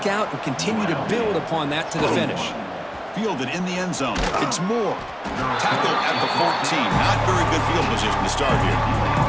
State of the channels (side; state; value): both; identical; correlation 1.00